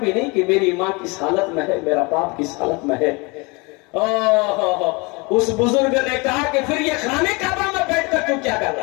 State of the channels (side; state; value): right; quieter; 27.8 dB